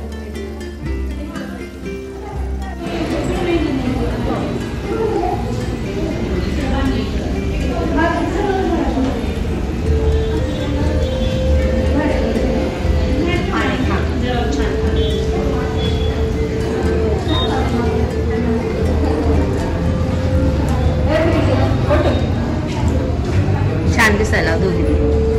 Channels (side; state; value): both; identical; correlation 1.00